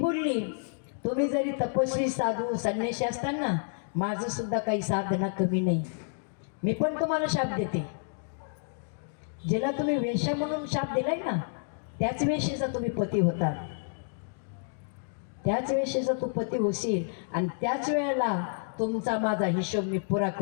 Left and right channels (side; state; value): right; silent; digital silence